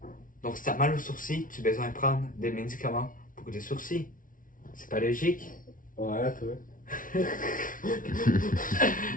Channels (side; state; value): right; late; 0.39 ms